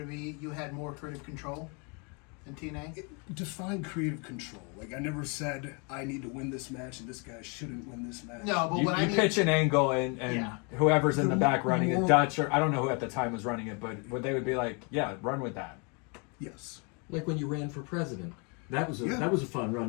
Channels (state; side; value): quieter; right; 33.7 dB